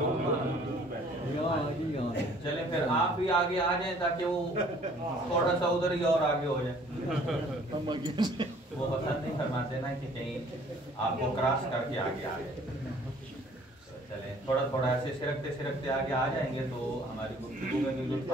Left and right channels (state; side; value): normal; both; correlation 0.56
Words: چلیں پھر آپ بھی آگے آ جائیں تاکہ وہ تھوڑا سا ادھر ہی اور آگے ہو جائے وہ پسند نہیں فرماتے نا کہ کہیں آپ کو کراس کر کے آگے آ جائے چلیں تھوڑا تھوڑا ایسے سرکتے آگے آ جائیں گے تو ہماری گفتگو میں بھی لطف